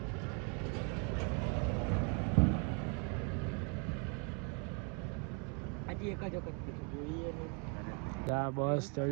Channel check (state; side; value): quieter; left; 35.6 dB